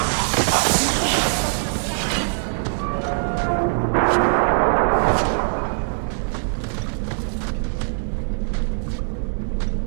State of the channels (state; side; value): silent; left; 64 dB below the other